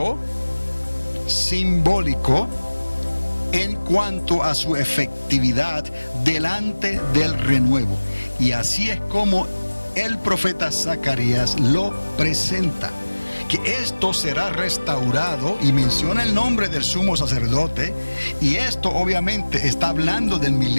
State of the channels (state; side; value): inverted; both; correlation -1.00